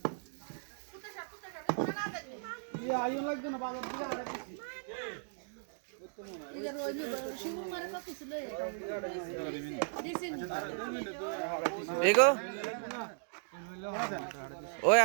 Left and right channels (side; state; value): left; silent; digital silence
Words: ये आयो लग ना बाजार दिले आले दिसी इधर रोज शिवू मारे का कुछ ले दिसिन এগো ওই